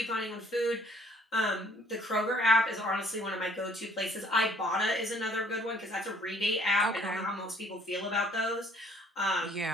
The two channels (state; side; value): normal; both; correlation 0.60